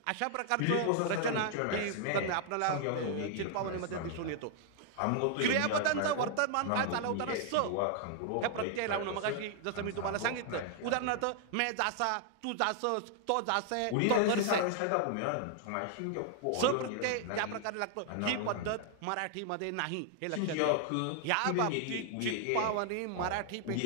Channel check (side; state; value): both; different; correlation 0.00